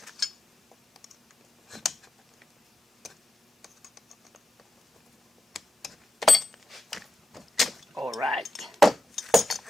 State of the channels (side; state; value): both; normal; correlation 0.88